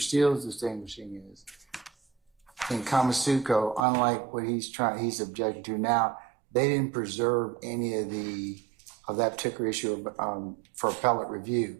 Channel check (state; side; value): drops out; left; at 3.8 s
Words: Steele is distinguishing is in Kamasuko, unlike what he's objecting to now, they didn't preserve any of that particular issue for appellate review